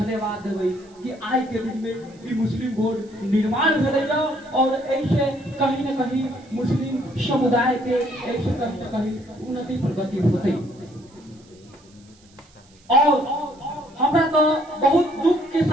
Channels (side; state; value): right; noise; hiss, 29 dB below the sound